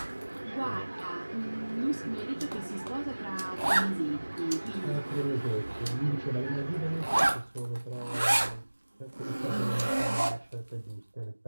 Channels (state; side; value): inverted; both; correlation -1.00